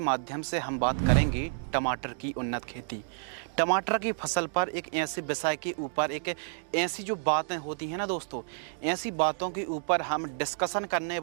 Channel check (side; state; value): left; silent; digital silence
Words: से हम बात करेंगे टमाटर की उन्नत खेती। टमाटर की फसल पर एक ऐसे विषय के ऊपर एक ऐसी जो बातें होती हैं ना दोस्तों, ऐसी बातों के ऊपर हम डिस्कशन करने